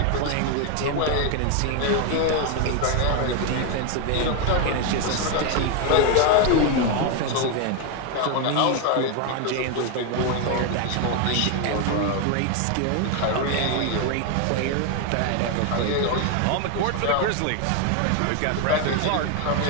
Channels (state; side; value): different; both; correlation 0.01